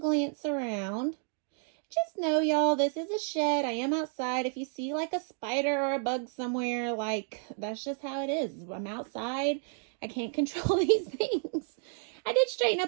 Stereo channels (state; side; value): silent; left; 55 dB below the other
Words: around. Just know, y'all, this is a shed. I am outside. If you see like a spider or a bug somewhere, like that's just how it is. I'm outside. I can't control these things. I did straighten